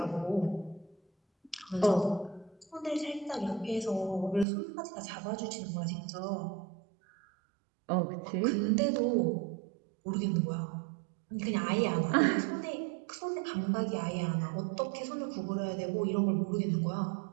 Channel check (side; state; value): left; drops out; at 4.5 s